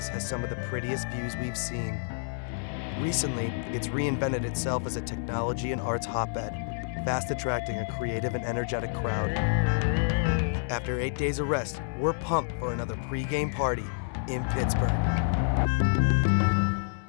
has some of the prettiest views we've seen. Recently, it's reinvented itself as a technology and arts hotbed, fast attracting a creative and energetic crowd. After 8 days of rest, we're pumped for another pre-game party in Pittsburgh.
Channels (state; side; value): silent; right; digital silence